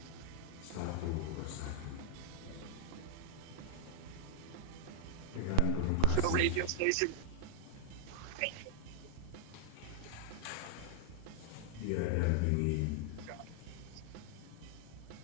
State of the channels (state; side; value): different; both; correlation 0.00